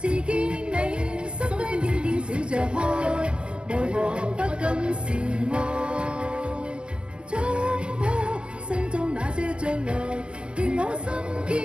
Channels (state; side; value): late; left; 0.056 ms